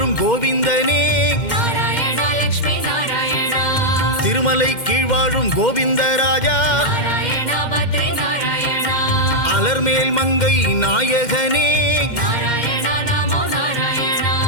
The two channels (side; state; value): right; late; 2.1 ms